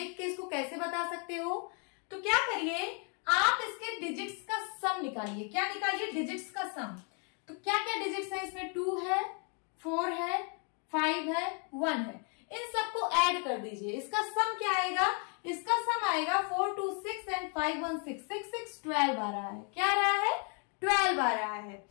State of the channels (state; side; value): quieter; right; 39.1 dB